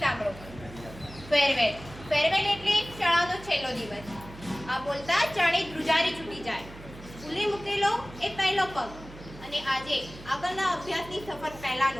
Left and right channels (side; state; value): right; noise; hum, 16 dB below the sound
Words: સાંભળો. ફેરવેલ એટલે શાળાનો છેલ્લો દિવસ. આ બોલતા જાણે ધ્રુજારી છૂટી જાય. સ્કૂલે મૂકેલો એ પહેલો પગ અને આજે આગળના અભ્યાસની સફર